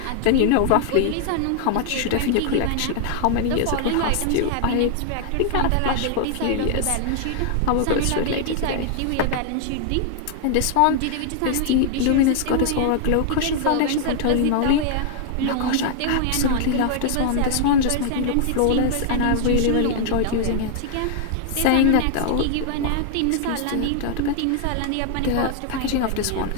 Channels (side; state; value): both; different; correlation 0.00